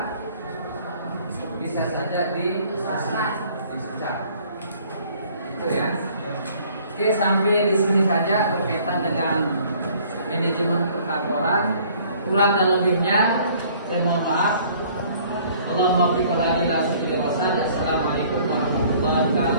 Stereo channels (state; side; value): inverted; both; correlation -0.56